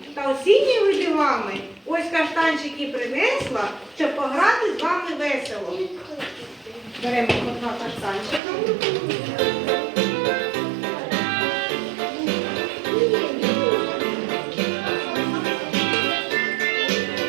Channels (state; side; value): drops out; left; at 8.4 s